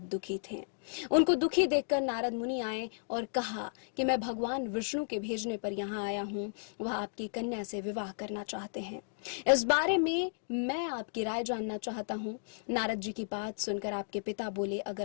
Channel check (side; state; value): right; silent; digital silence